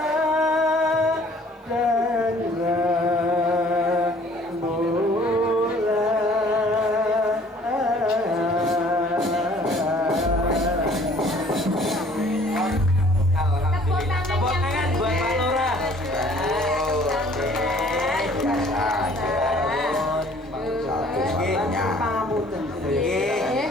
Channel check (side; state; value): both; normal; correlation 0.55